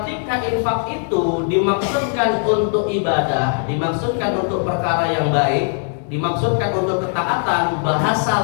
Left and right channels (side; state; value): right; silent; 56 dB below the other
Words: infak itu dimaksudkan untuk ibadah, dimaksudkan untuk perkara yang baik, dimaksudkan untuk ketaatan, bahasa